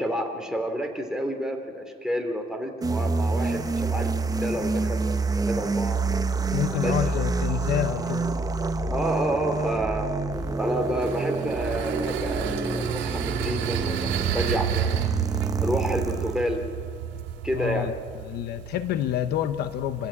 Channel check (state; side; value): normal; both; correlation 0.64